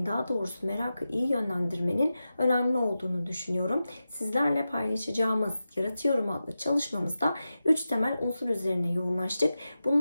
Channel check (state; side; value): inverted; both; correlation -0.93